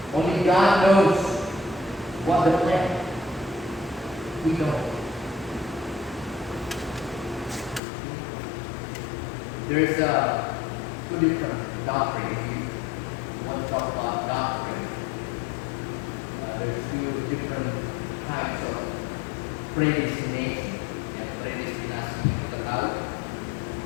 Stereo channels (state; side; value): drops out; right; at 7.8 s